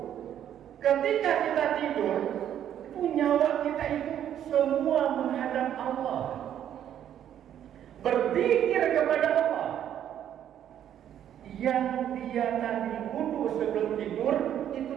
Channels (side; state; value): left; quieter; 10.3 dB